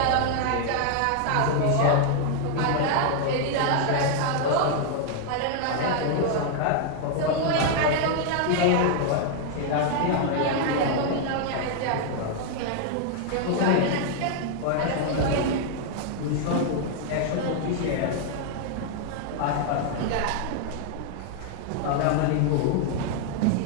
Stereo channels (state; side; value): different; both; correlation 0.00